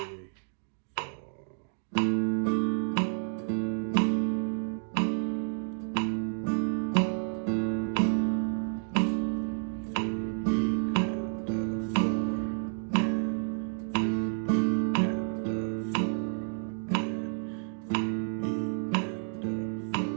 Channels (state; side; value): silent; left; digital silence